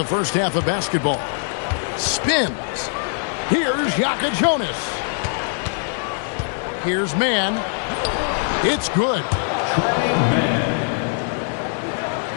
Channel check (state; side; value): silent; right; 59 dB below the other